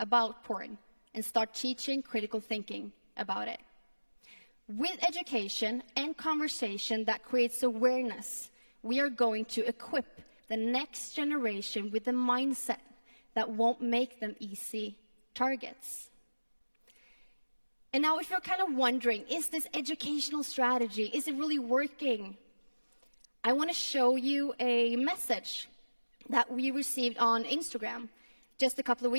porn and start teaching critical thinking about it. With education and conversation that creates awareness, we are going to equip the next generation with a mindset that won't make them easy targets. And now if you're kind of wondering, is this educational strategy, is it really working? I want to show you a message that we received on Instagram just a couple of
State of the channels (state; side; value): inverted; both; correlation -1.00